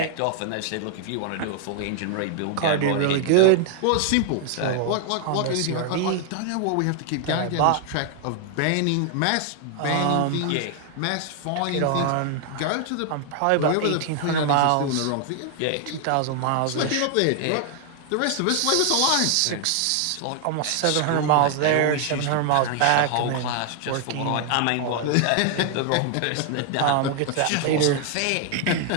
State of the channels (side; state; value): both; different; correlation 0.00